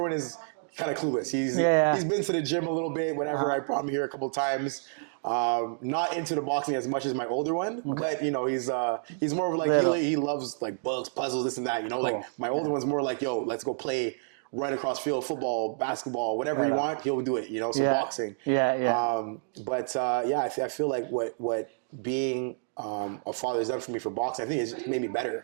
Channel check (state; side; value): silent; left; digital silence